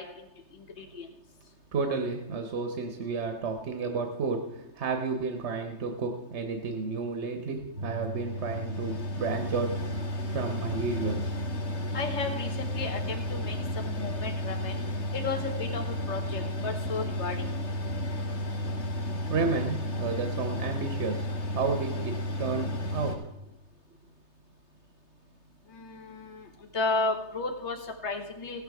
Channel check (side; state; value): left; late; 3.3 ms